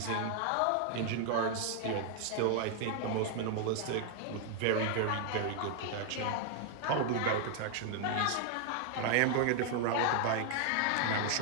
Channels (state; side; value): different; both; correlation 0.00